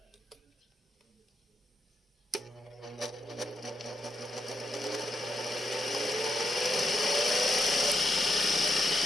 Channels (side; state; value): both; normal; correlation 0.81